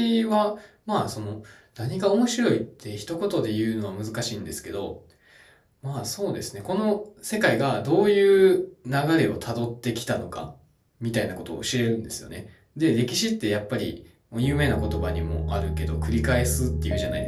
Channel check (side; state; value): both; identical; correlation 1.00